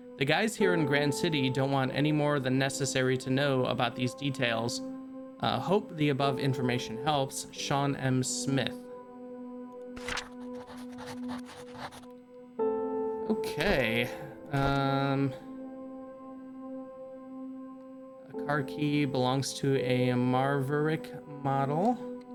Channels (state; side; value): identical; both; correlation 1.00